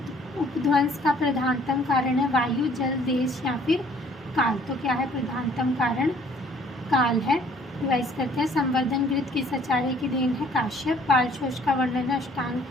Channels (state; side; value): normal; both; correlation 0.58